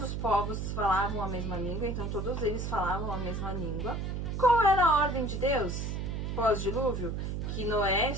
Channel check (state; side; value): noise; right; hum, 3 dB below the sound